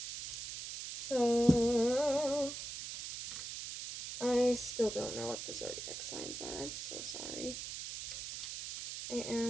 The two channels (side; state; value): right; noise; hiss, 7 dB below the sound